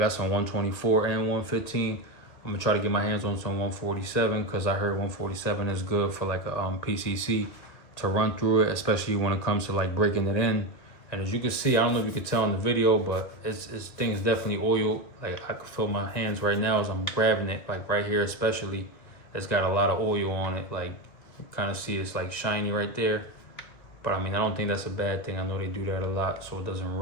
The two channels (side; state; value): right; late; 2.4 ms